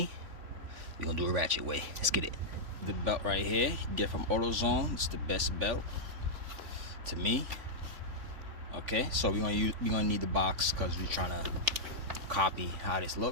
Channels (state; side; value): late; left; 3.4 ms